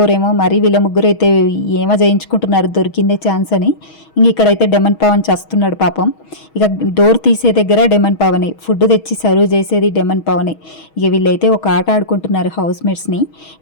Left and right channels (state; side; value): late; right; 6.3 ms